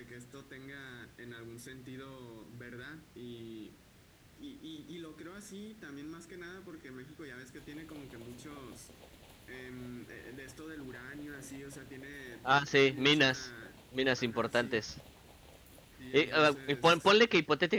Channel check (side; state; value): both; identical; correlation 1.00